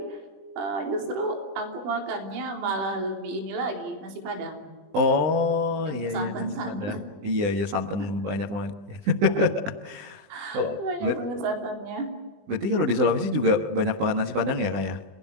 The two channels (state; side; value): late; left; 20 ms